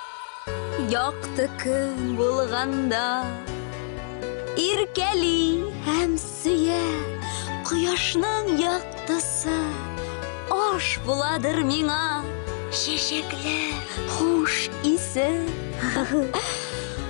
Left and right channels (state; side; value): silent; right; digital silence